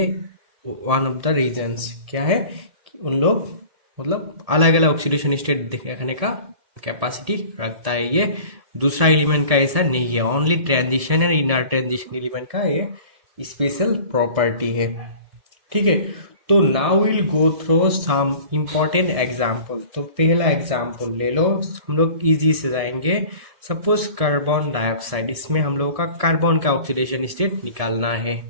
वन ऑफ द रीजन्स क्या है कि उन लोग मतलब अलग अलग ऑक्सीडेशन स्टेट देखने का कैपेसिटी रखता है। ये दूसरा एलिमेंट का ऐसा नहीं है, only transition and inner transition element का ये स्पेशल प्रॉपर्टी है, ठीक है। तो now will go through some important example. तो पहला एग्जाम्पल ले लो, हम लोग इजी से जाएंगे। सपोज कार्बन डाइऑक्साइड, इसमें हम लोग का कार्बन का ऑक्सीडेशन स्टेट निकालना है,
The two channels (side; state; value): left; late; 1.7 ms